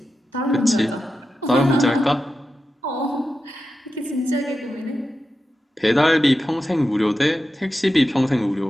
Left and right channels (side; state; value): both; normal; correlation 0.91